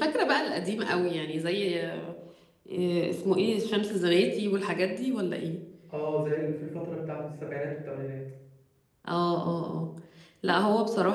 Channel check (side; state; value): both; identical; correlation 1.00